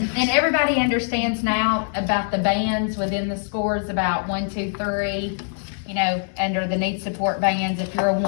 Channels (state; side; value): silent; right; digital silence